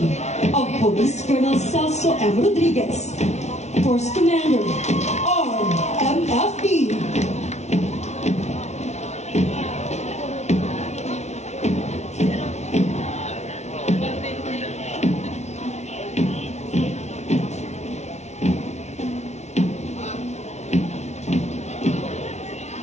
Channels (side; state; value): right; late; 0.32 ms